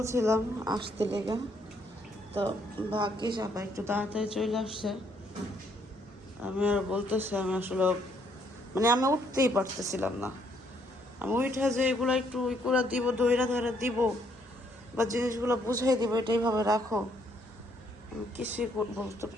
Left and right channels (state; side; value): normal; both; correlation 0.69